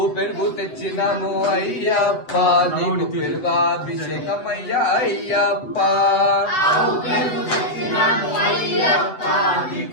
పెరుగు తెచ్చినాము అయ్యప్ప నీకు పెరుగాభిషేకమయ్య అయ్యప్ప. ఆవు పెరుగు తెచ్చినాము అయ్యప్ప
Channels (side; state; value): right; late; 7.9 ms